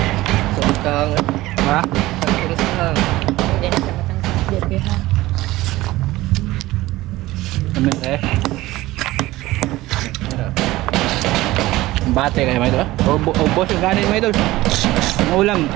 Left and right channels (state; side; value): quieter; left; 17.8 dB